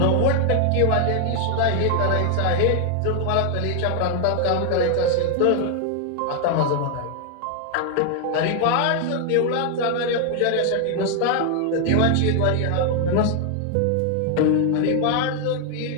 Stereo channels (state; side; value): different; both; correlation 0.00